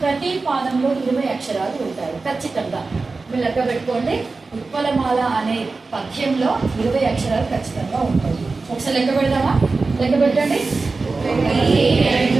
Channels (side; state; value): left; quieter; 3.9 dB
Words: ప్రతి పాదంలో 20 అక్షరాలు ఉంటాయి ఖచ్చితంగా. మీరు లెక్క పెట్టుకోండి. ఉత్పలమాల అనే పద్యంలో 20 అక్షరాలు ఖచ్చితంగా ఉంటాయి. ఒకసారి లెక్క పెడదామా? లెక్క పెట్టండి. 1,